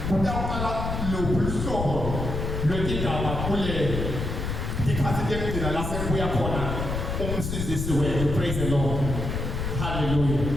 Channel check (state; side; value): noise; left; rumble, 3 dB below the sound